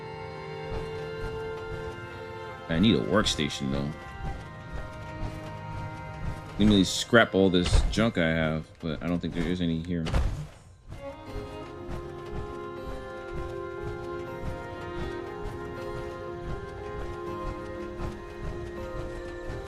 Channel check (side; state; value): both; identical; correlation 1.00